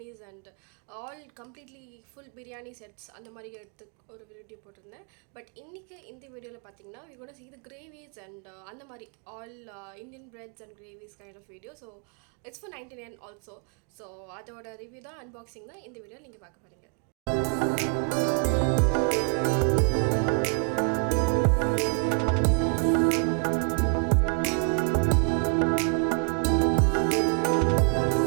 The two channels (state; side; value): quieter; left; 39.3 dB